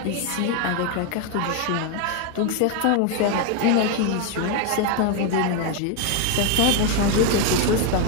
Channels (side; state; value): both; different; correlation 0.01